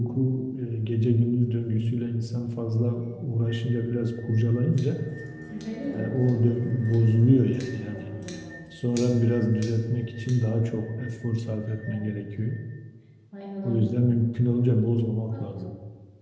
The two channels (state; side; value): identical; both; correlation 1.00